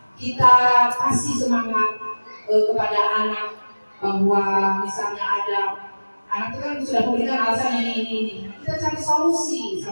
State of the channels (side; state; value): both; inverted; correlation -1.00